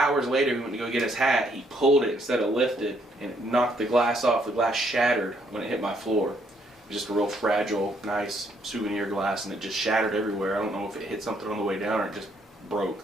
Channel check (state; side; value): normal; both; correlation 0.70